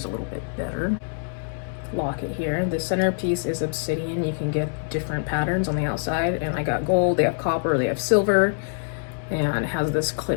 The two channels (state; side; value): silent; right; digital silence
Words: a little bit better. Locket here. The centerpiece is obsidian. You can get different patterns on the outside, and I got gold, they have copper, they have silver, and it has this